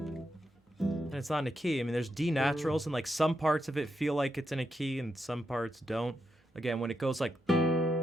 it's not in a key. I mean, there's D naturals, and like some parts of it feel like it's in a key, and some parts don't. Again, when it goes like,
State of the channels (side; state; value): both; normal; correlation 0.84